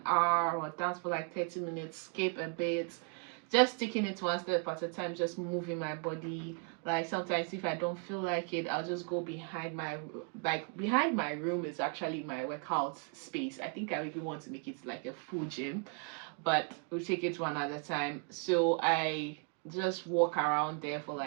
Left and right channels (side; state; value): left; quieter; 37.4 dB